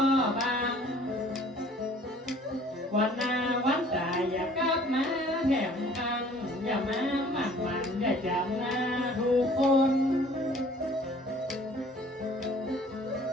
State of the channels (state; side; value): normal; both; correlation 0.53